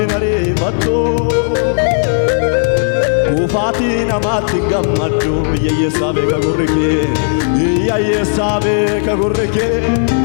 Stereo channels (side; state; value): right; silent; 61 dB below the other